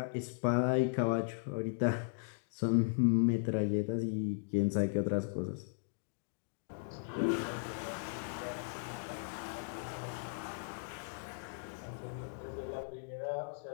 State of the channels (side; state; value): right; silent; digital silence